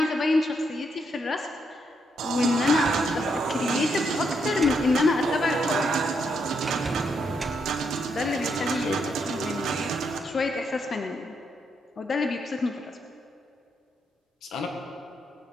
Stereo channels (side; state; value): both; normal; correlation 0.78